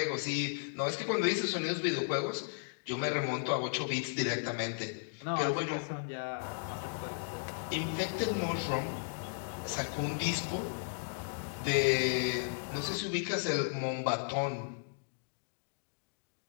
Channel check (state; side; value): silent; right; digital silence